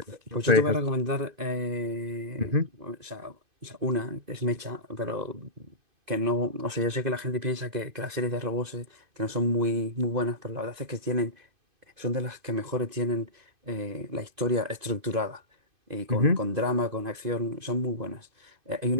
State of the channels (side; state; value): left; late; 2.5 ms